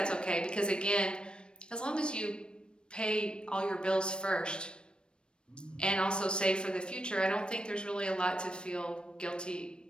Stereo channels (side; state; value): right; late; 0.054 ms